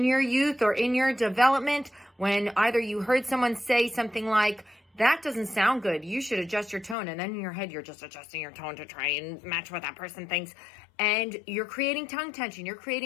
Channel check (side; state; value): right; drops out; at 7.0 s